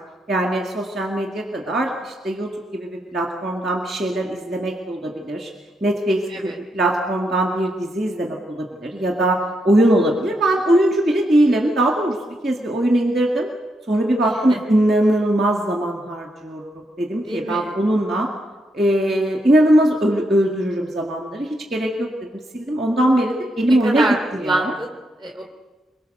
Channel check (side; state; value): both; normal; correlation 0.80